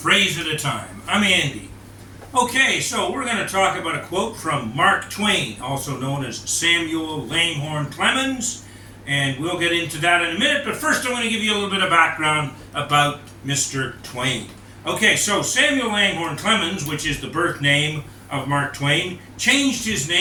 at a Time. I'm Andy. Okay, so we're going to talk about a quote from Mark Twain, also known as Samuel Langhorne Clemens, and we'll get into that in a minute, but first I want to give you a little bit of background about Mr. Twain. Okay, so Samuel Langhorne Clemens, which is the birth name of Mark Twain, changed his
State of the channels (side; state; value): both; identical; correlation 1.00